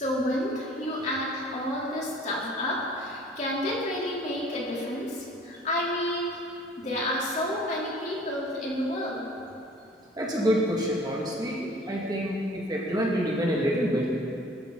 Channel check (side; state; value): both; normal; correlation 0.50